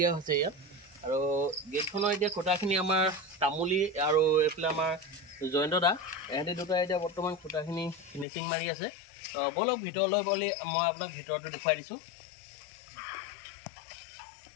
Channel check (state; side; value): drops out; right; at 8.2 s